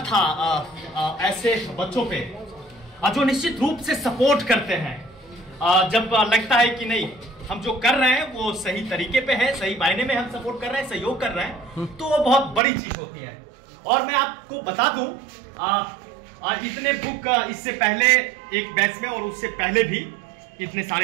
था ऐसे बच्चों पे जो निश्चित रूप से सपोर्ट करते हैं। जब लगता है कि नहीं, हम जो कर रहे हैं वो सही तरीके पे है, सही मायने में हम सपोर्ट कर रहे हैं, सहयोग कर रहे हैं, तो वो बहुत बड़ी चीज होती है। और मैं आपको बता दूं, इतने बुक इससे पहले एक बैच में और उससे पहले भी इतने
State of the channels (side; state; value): left; drops out; at 12.6 s